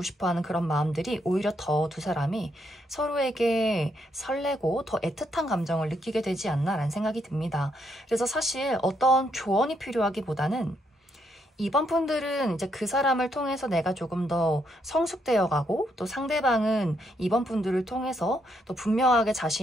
싶어하는 그런 마음들이 오히려 더 두 사람이 서로에게 설레고 더 애틋한 감정을 느끼게 되지 않나라는 생각이 듭니다. 그래서 사실 어떤 조언이 필요하기보다는 이번 분들은 이제 그 사람을 통해서 내가 조금 더 성숙되어 가고 또 상대방은 이번 분들을 통해서 또 분명하게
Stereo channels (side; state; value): both; normal; correlation 0.76